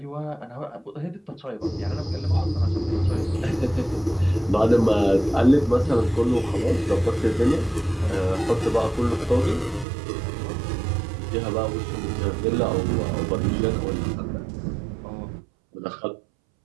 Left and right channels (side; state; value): left; drops out; at 9.9 s